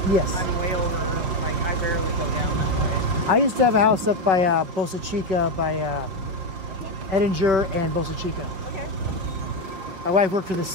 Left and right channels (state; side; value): late; left; 5.7 ms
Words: I'm way over. Like I barely go down that way. I used to have a house up by Boca Chica, by Edinger and Boca Chica. Okay. My wife worked for the